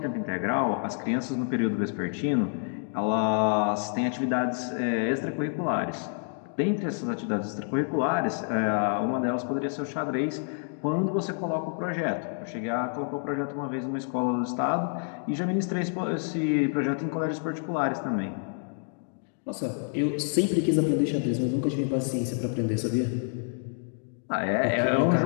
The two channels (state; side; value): silent; right; 59 dB below the other